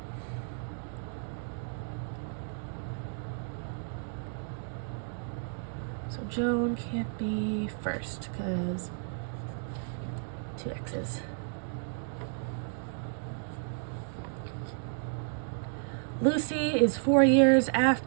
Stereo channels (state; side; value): silent; left; digital silence